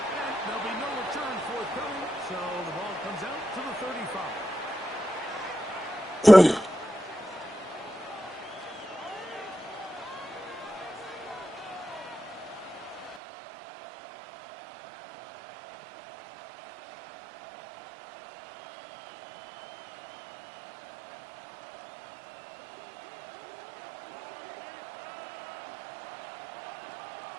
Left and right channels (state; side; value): drops out; left; at 13.2 s